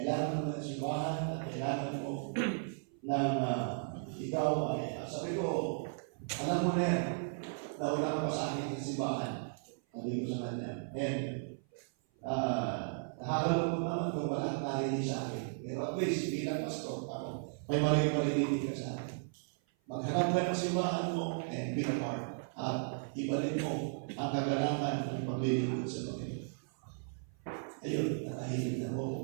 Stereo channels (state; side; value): silent; left; 54 dB below the other